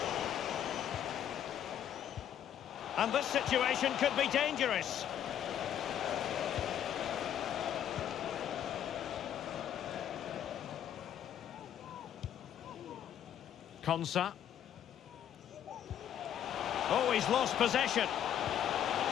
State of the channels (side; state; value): right; quieter; 10.1 dB